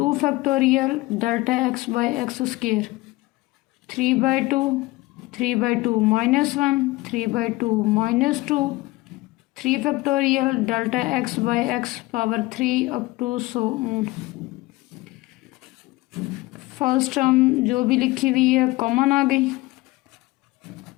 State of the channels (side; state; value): right; quieter; 20.2 dB